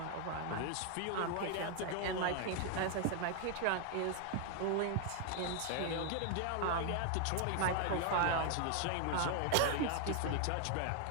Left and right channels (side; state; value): both; different; correlation 0.00